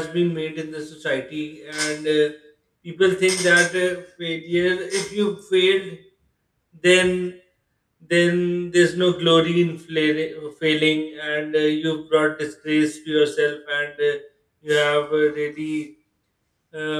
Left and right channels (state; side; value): identical; both; correlation 1.00